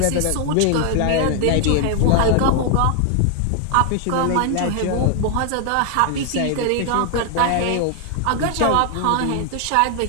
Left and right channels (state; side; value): different; both; correlation 0.00